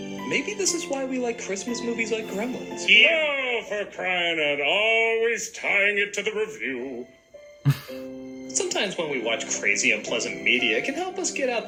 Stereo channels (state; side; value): identical; both; correlation 1.00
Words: maybe this is why we like Christmas movies like Gremlins. Yeah, for crying out, always tying it to the review. Sometimes when we watch crazy, unpleasant media, it can help us get